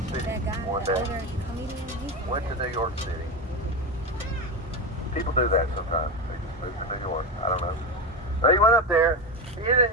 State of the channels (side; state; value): both; normal; correlation 0.17